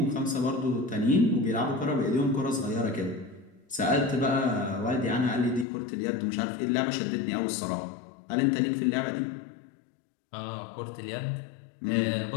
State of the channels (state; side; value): drops out; right; at 5.7 s